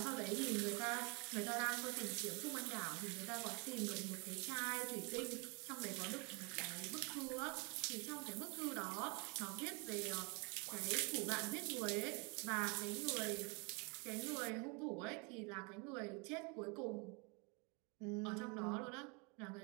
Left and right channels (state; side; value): quieter; left; 31.6 dB